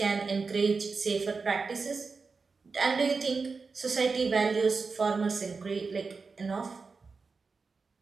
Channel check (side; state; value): left; quieter; 4.5 dB